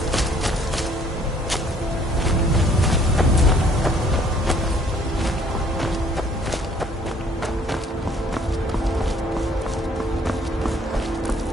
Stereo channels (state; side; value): normal; both; correlation 0.60